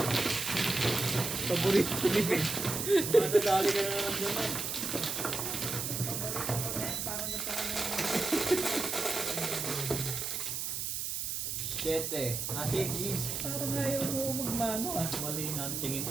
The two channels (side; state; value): right; noise; hiss, 2 dB below the sound